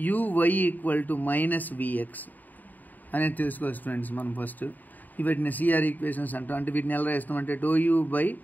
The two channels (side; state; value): right; late; 0.085 ms